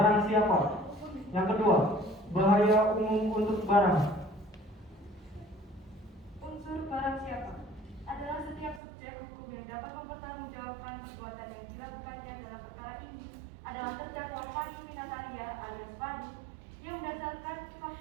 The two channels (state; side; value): drops out; left; at 8.8 s